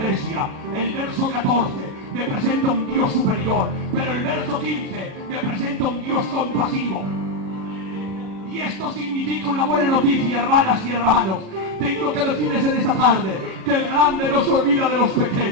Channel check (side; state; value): left; late; 37 ms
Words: el verso 14 me presenta un Dios superior, pero el verso 15 me presenta un Dios compasivo. Y esto significa una buena noticia, hermanas y hermanos. Tengo que decirles en esta tarde que el grande no se olvida de los